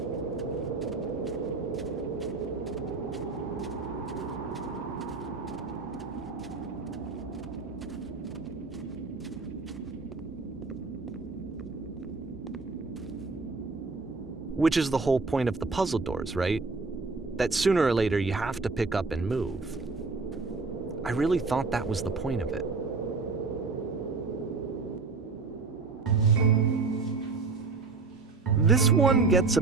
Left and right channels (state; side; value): quieter; left; 4.1 dB